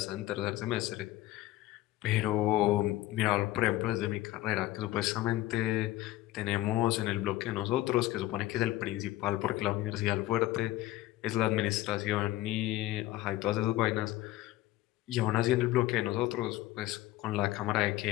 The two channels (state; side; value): quieter; right; 15.9 dB